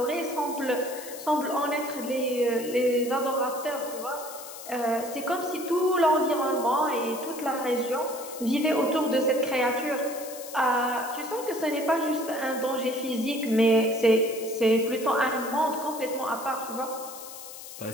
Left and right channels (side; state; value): left; noise; hiss, 13 dB below the sound